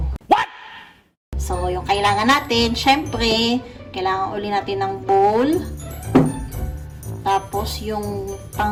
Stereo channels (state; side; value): identical; both; correlation 1.00